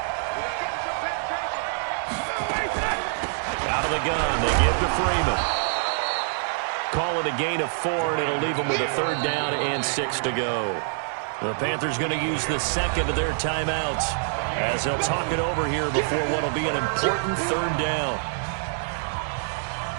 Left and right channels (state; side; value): silent; left; digital silence